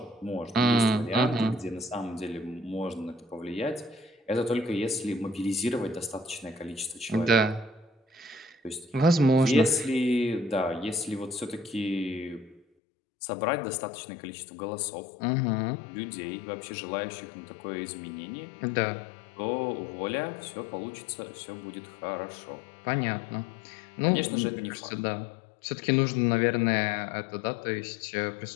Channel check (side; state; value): right; drops out; at 12.6 s